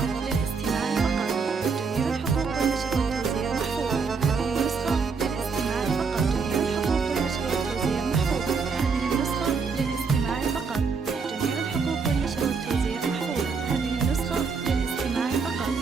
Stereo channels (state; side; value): quieter; left; 5.2 dB